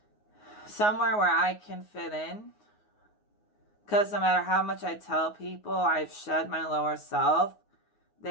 Somewhere where I can fit in. Because no matter how much I tell people I've shed my lower self,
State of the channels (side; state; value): right; late; 9.5 ms